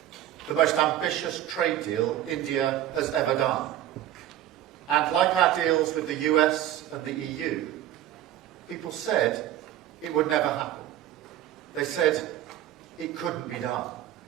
the most ambitious trade deal India has ever done. And like our deals with the US and the EU, people said it would never happen. They said it couldn't be done.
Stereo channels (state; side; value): quieter; left; 12.5 dB